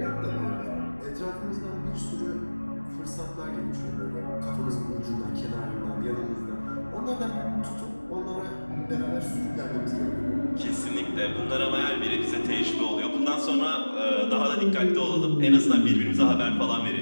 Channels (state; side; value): inverted; both; correlation -1.00